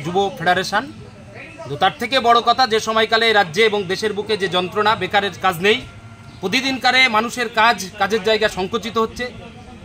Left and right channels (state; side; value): identical; both; correlation 1.00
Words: যুব ফেডারেশন। তো তার থেকে বড় কথা, যে সময়কালে রাজ্যে এবং দেশের বুকে যে যন্ত্রণা, বেকারের কাজ নেই, প্রতিদিনকারে মানুষের কাজের জায়গা সংকুচিত হচ্ছে,